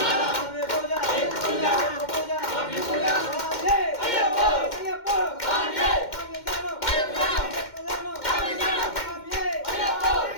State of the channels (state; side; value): late; right; 2.1 ms